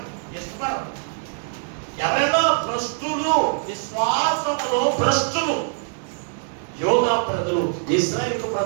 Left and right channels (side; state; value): left; silent; digital silence